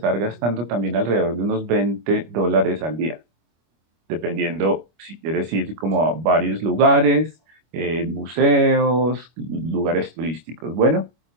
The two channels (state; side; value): late; left; 25 ms